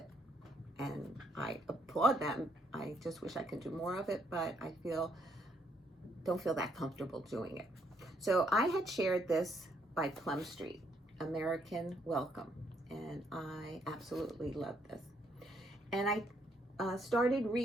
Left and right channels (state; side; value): normal; both; correlation 0.71